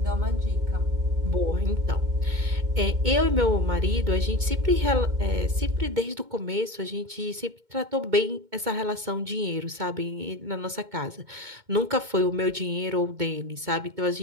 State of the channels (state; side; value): late; left; 2.2 ms